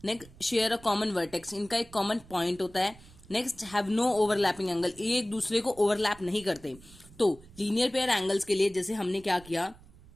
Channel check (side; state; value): right; noise; rumble, 22 dB below the sound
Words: Next share a common vertex, इनका एक कॉमन पॉइंट होता है। Next have no overlapping angle, ये एक दूसरे को ओवरलैप नहीं करते। तो लीनियर पेयर एंगल्स के लिए जैसे हमने क्या किया,